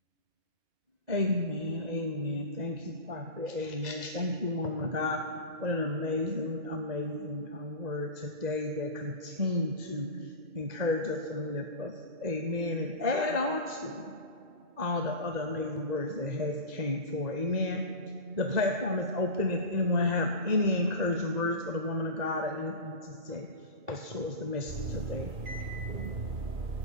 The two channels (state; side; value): late; left; 2.4 ms